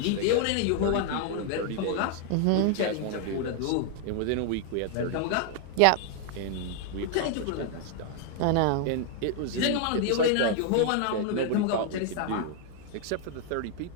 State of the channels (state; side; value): different; both; correlation 0.00